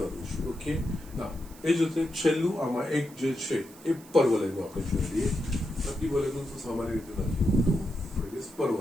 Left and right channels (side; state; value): right; noise; hiss, 22 dB below the sound